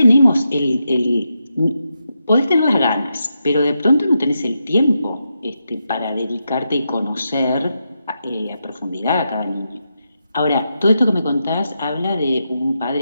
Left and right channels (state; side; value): inverted; both; correlation -0.85